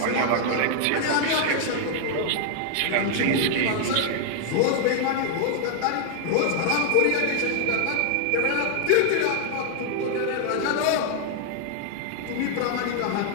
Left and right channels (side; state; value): both; different; correlation 0.00